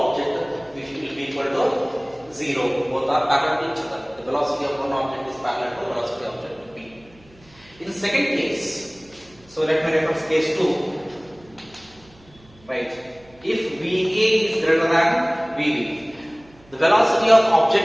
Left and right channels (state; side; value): noise; right; hum, 27 dB below the sound